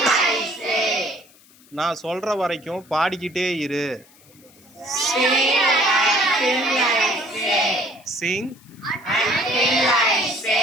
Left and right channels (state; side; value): noise; left; hiss, 27 dB below the sound